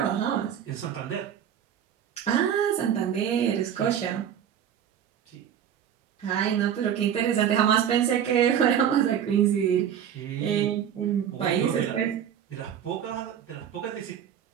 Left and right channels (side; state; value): left; quieter; 9.1 dB